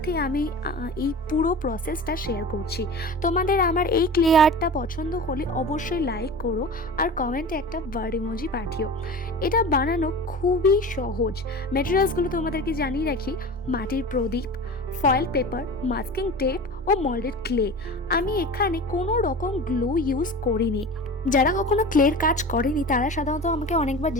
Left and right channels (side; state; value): both; normal; correlation 0.34